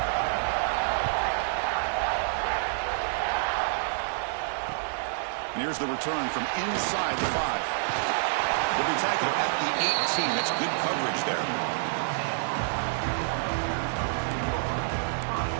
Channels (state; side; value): silent; left; 55 dB below the other